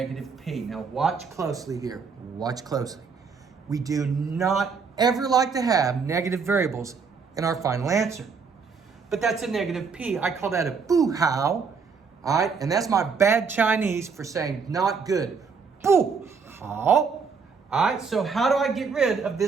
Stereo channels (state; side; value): quieter; left; 5.4 dB